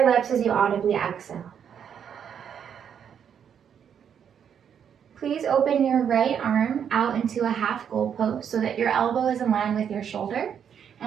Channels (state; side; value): quieter; left; 8.2 dB